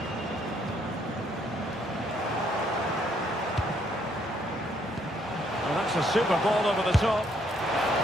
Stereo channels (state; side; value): normal; both; correlation 0.69